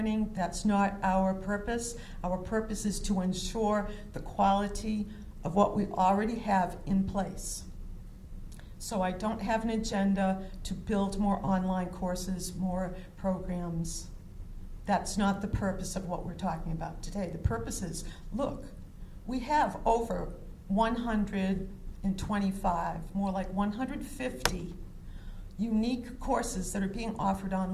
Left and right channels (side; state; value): both; identical; correlation 1.00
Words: That's not our purpose. Our purpose is to ensure the quality of what we already have in place. So I don't have an agenda to build more online courses, more programs. That's not the purpose of what we're talking about today. The purpose is, look, we have over 125, more like 150 unique courses that are being offered